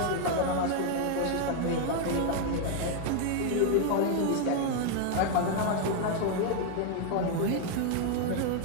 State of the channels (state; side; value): different; both; correlation 0.00